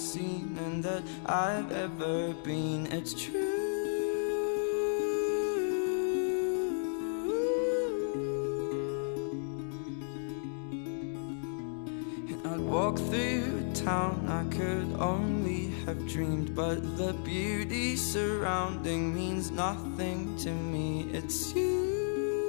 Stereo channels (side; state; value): right; silent; digital silence